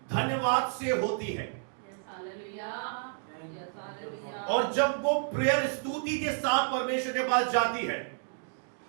धन्यवाद से होती है। और जब वो प्रेयर स्तुति के साथ परमेश्वर के पास जाती है,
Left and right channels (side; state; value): left; silent; digital silence